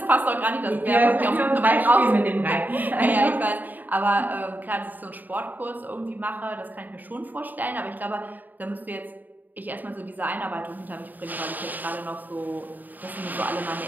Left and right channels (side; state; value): left; late; 0.085 ms